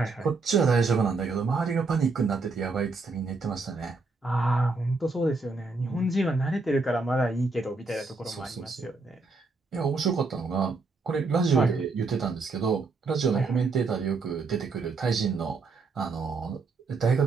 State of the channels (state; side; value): quieter; left; 3.9 dB